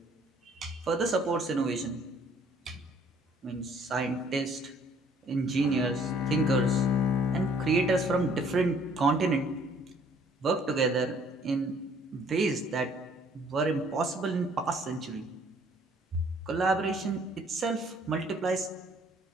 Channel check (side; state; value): both; normal; correlation 0.59